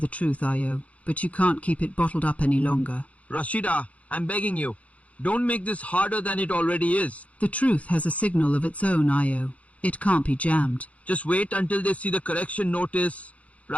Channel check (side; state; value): right; late; 0.066 ms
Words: truth, Io, but you can't keep it bottled up any longer. Rashida, I'm begging you. Don't make this harder than it already is. The truth has a signal of its own, Io. It can't be jammed. Just wait until they see the correction notice.